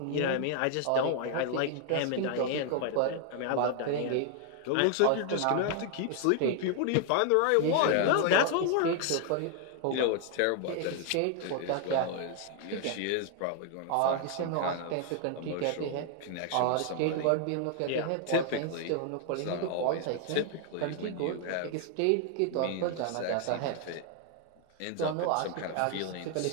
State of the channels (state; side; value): different; both; correlation 0.00